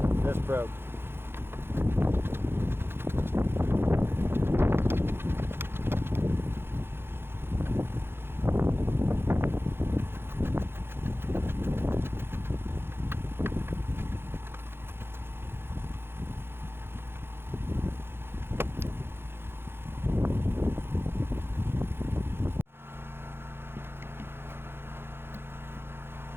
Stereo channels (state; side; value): late; left; 0.11 ms